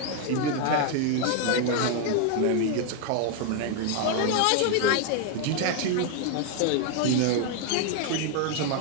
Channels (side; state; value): both; different; correlation 0.00